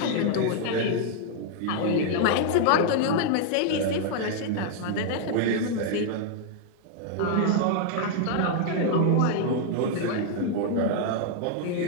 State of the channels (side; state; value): both; different; correlation -0.01